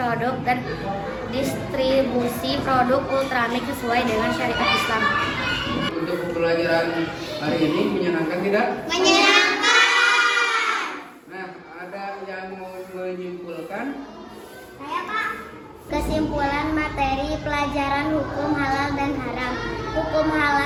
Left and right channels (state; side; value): identical; both; correlation 1.00